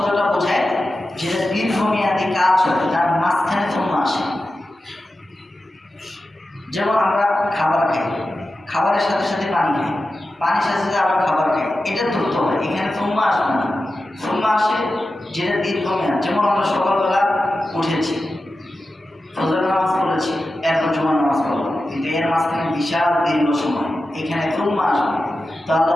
বোঝায় যেটা দীর্ঘমেয়াদী কাজ হয়, তার মাঝখানে সুম্মা আসে। যেমন আমরা খাবার খাই, খাবারের সাথে সাথে পানি খাই, পানির সাথে সাথে আবার খাবার খাই, এটা দ্রুত হয়। এখানে সুম্মা আসবে না, সুম্মা আসে যেটা দীর্ঘমেয়াদ। যেমন আমরা সকালবেলা উঠেছি, ফজর নামাজ পড়েছি, এরপর জুমার নামাজ পড়লাম, কিন্তু এর মাঝখানে বিশাল দীর্ঘ সময়, এখানে সুম্মা আসবে। তো আল্লাহ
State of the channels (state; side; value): normal; both; correlation 0.92